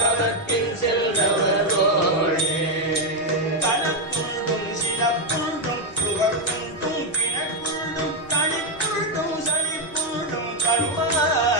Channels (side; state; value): both; normal; correlation 0.04